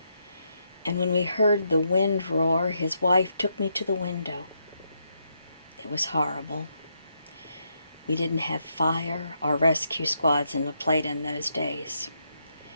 And when we heard the wind roar, his wife took me to the window. It was horrible. We didn't have fire or rescue squads in La Plata in those days.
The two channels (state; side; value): inverted; both; correlation -0.79